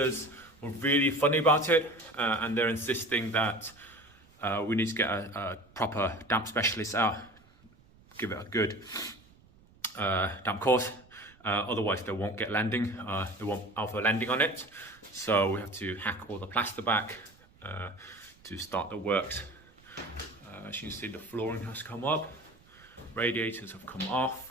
were really funny about it, and they're insisting that we need to get a proper damp specialist out, give it a good damp course, otherwise they won't get lending, they won't offer lending on it. So we have to hack all the plaster back to start the works. As you can see, the flooring has come up, radiators have come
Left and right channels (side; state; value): right; noise; rumble, 27 dB below the sound